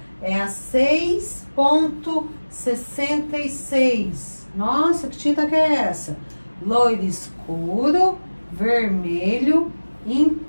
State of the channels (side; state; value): both; inverted; correlation -1.00